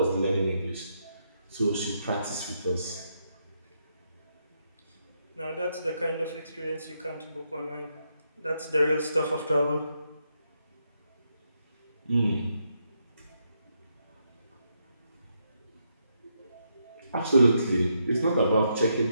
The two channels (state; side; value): inverted; both; correlation -0.80